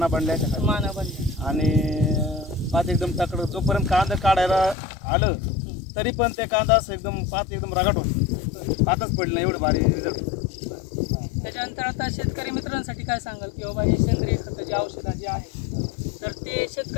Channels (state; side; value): drops out; right; at 4.8 s